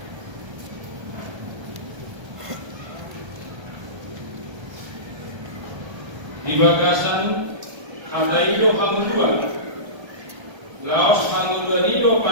bagasan kadaido hamuluan laos hanguluanido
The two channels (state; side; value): late; left; 1.3 ms